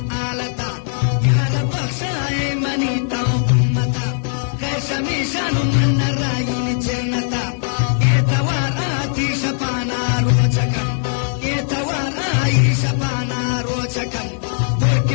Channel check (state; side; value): silent; right; 61 dB below the other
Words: आलता यार बख्शाए मनी ताओ उम्मता खैर शमीशानु मन रायिन जन्नता एतवार आती शपाना रोचकन एतवार आई शपाना रोचकन और